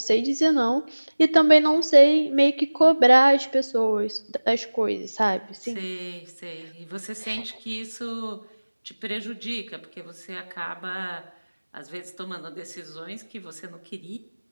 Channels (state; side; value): inverted; both; correlation -1.00